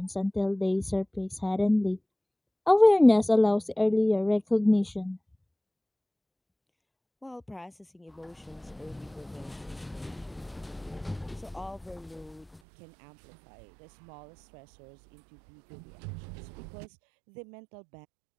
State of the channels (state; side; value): drops out; left; at 12.6 s